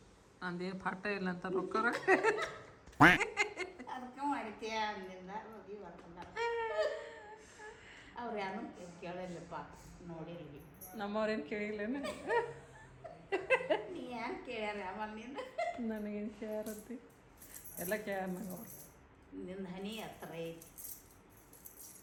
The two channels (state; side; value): identical; both; correlation 1.00